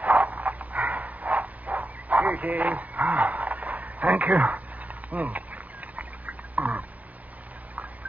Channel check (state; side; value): late; left; 0.075 ms